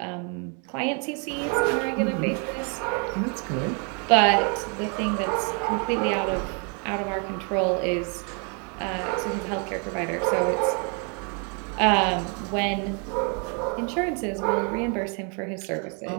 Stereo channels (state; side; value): quieter; left; 37.8 dB